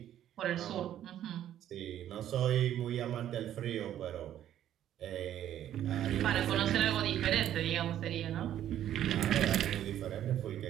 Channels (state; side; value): quieter; left; 11.3 dB